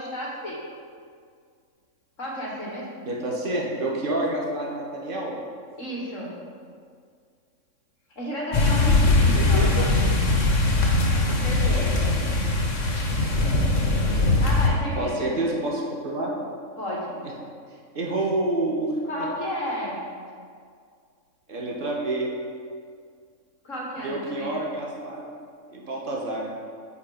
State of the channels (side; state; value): right; late; 3.6 ms